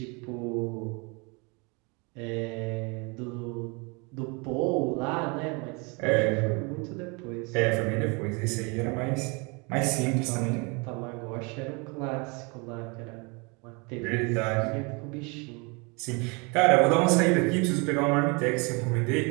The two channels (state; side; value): quieter; left; 30.3 dB